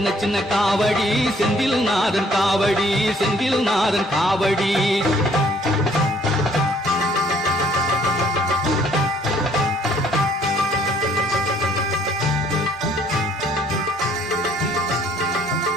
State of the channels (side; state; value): both; normal; correlation 0.62